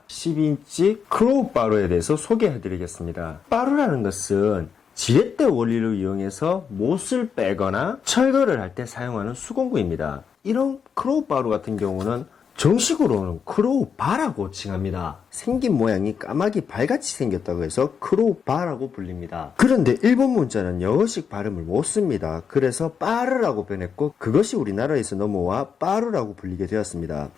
10인치 크로우 바루에 대해서 소개해 드리겠습니다. 바루라는 것은 지렛대 원리를 이용해서 못을 빼거나 철거를 할 때 사용하는 수공구입니다. 이런 크로우 바루 같은 경우는 정식으로는 크로우 바라고 칭합니다. 생긴 모양이 까마귀 발같이 생겼다고 해서 크로우 바라고 불립니다. 그런데 일본 문자는 영어식 발음을 못 씁니다. 그래서 빠르라고 변했고 그것이 우리나라에서 넘어와 빠루라고 불리게 되었습니다.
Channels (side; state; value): right; quieter; 6.7 dB